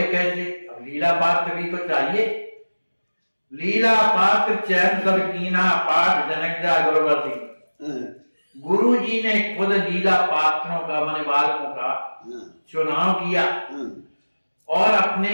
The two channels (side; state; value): both; inverted; correlation -1.00